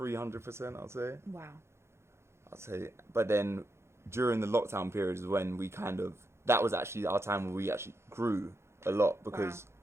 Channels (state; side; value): late; left; 0.13 ms